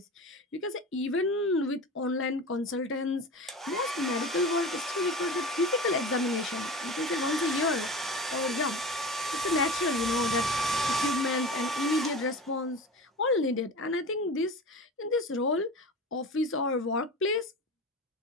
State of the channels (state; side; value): normal; both; correlation 0.32